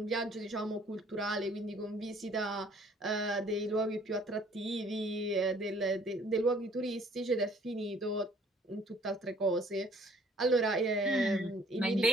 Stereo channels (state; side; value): normal; both; correlation 0.57